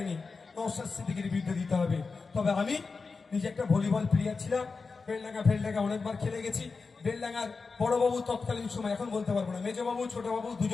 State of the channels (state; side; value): quieter; right; 4.5 dB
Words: নওশাদ সিদ্দিকীর বিরুদ্ধে দিতে হবে। তবে আমি নিজে একটা ভলিবল প্লেয়ার ছিলাম, বেলডাঙ্গা অনেকবার খেলে গেছি। বেলডাঙ্গার বড়বাবু তৎকালীন সময়, এখন বলতে পারবো না, মেজবাবু ছোটবাবু